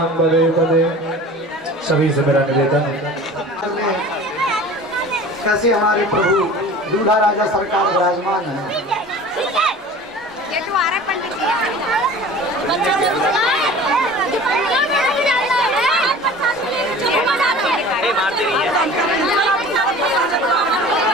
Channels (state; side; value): normal; both; correlation 0.41